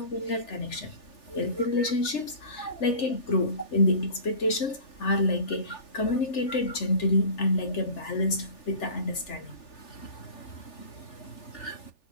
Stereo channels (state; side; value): late; right; 3.4 ms